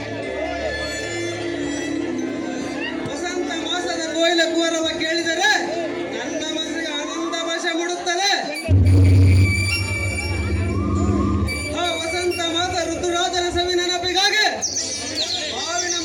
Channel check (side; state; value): both; identical; correlation 1.00